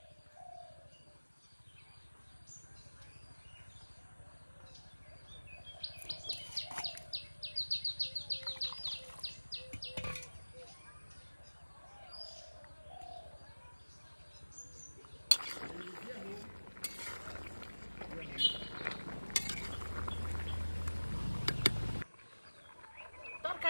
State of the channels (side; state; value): both; inverted; correlation -1.00